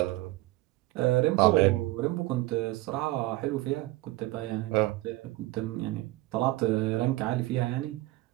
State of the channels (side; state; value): left; quieter; 19.2 dB